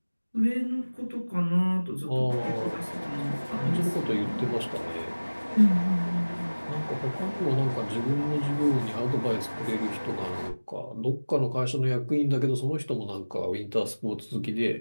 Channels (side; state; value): both; inverted; correlation -1.00